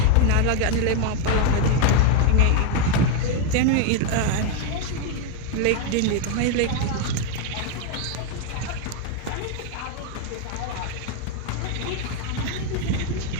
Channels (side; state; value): both; different; correlation 0.01